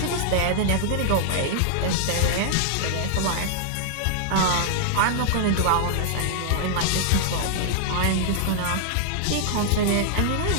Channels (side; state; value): both; different; correlation -0.01